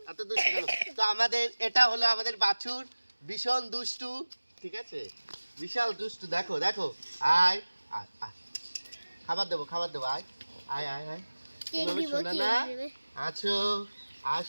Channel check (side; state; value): both; inverted; correlation -1.00